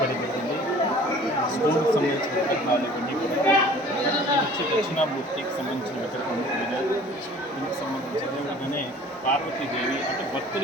జరిగింది. స్కూల్కి సంబంధించిన విగ్రహాలు ఇవన్నీ కూడా వచ్చి దక్షిణామూర్తికి సంబంధించిన విగ్రహం, దీనికి సంబంధించి అదేవిధంగానే పార్వతీదేవి అంటే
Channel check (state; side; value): normal; both; correlation 0.48